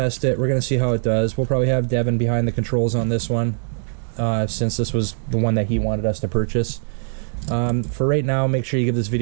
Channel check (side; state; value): left; silent; digital silence